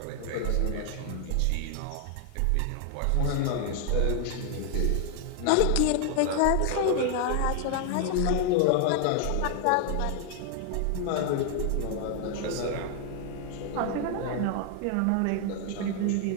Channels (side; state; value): both; different; correlation 0.00